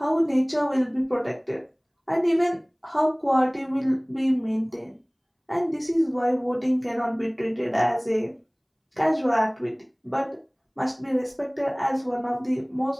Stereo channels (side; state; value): both; identical; correlation 1.00